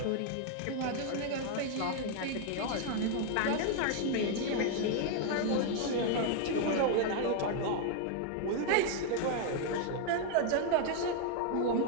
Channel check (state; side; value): different; both; correlation 0.00